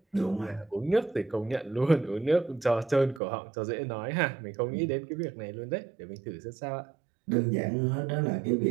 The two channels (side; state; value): left; drops out; at 3.2 s